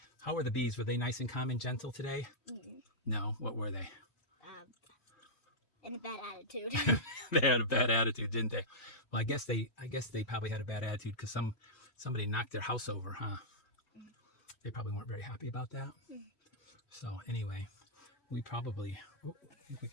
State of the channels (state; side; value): late; right; 3.1 ms